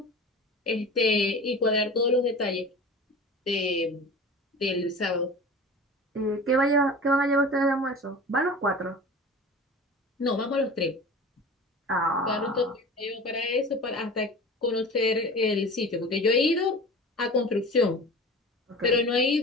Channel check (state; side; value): normal; both; correlation 0.36